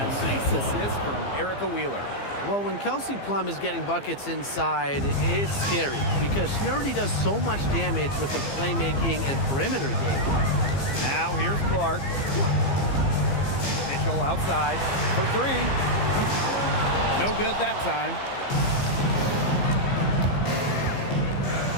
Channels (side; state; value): right; late; 15 ms